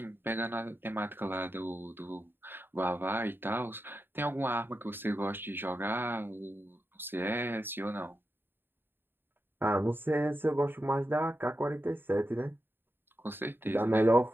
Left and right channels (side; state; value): left; late; 0.10 ms